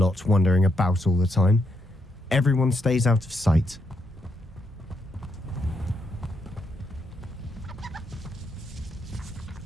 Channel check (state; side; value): normal; both; correlation 0.79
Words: wandering about all the time, everyone stays out of sight.